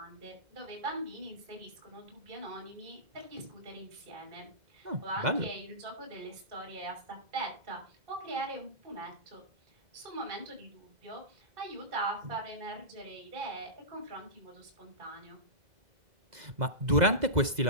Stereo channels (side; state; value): left; late; 2.0 ms